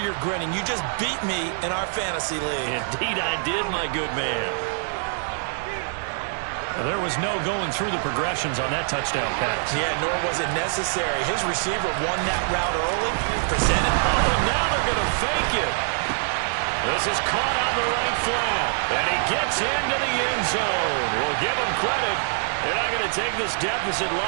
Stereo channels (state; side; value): silent; left; 62 dB below the other